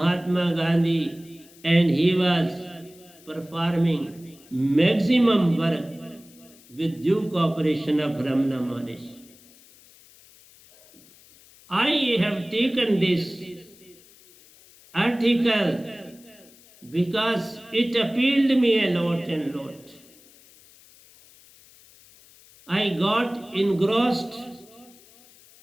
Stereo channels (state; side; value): noise; left; hiss, 25 dB below the sound